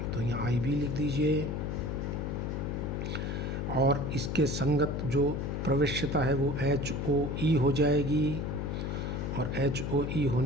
तो यहाँ IB लिख दीजिए, और इसके संगत जो प्रवेश्यता है वो HOE हो जाएगी, और HOE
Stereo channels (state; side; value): noise; left; hum, 2 dB below the sound